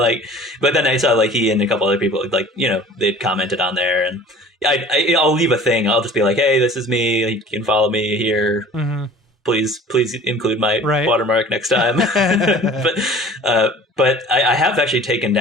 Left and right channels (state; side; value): normal; both; correlation 0.46